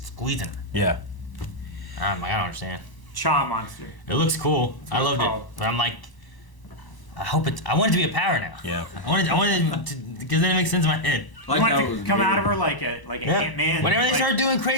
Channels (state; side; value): late; right; 1.0 ms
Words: her. Yeah. I'm like, I don't understand. Cha monster. It looks cool. I what loved it's it, called. but I'm like, I want it to be a power now. Yeah. I wanted it to, because then it makes sense in my head. I You like want how it it to was come weird. out of her like a Ant-Man. Whenever they like, start doing